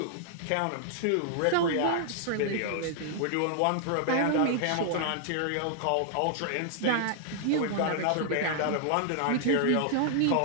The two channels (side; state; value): both; different; correlation -0.01